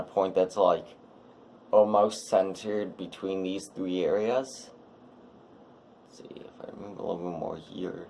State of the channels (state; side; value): identical; both; correlation 1.00